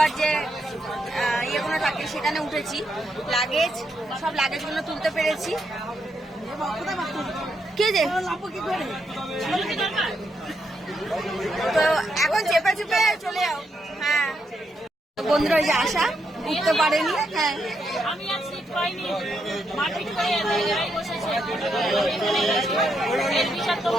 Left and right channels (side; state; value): both; normal; correlation 0.80